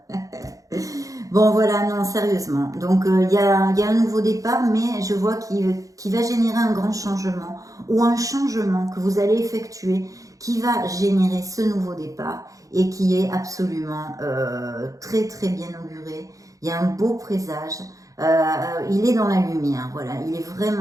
Bon, voilà, non, sérieusement. Donc, il y a un nouveau départ, mais je vois qu'il va générer un grand changement, ou un changement que vous allez effectuer, qui va générer ce nouveau départ, et qui est absolument très, très bien auguré. Il y a un beau présage. il est dans la lumière, voilà, il est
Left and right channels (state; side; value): late; left; 0.16 ms